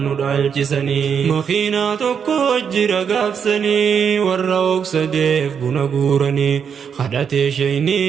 ندالجسني مخينا تكو جرى قافسني والروك سديف بنقورني خدت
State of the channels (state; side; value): quieter; left; 7.1 dB